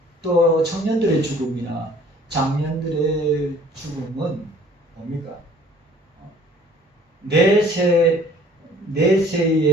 또 청년들의 죽음이나 장년들의 죽음은 뭡니까? 내세에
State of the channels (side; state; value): both; normal; correlation 0.53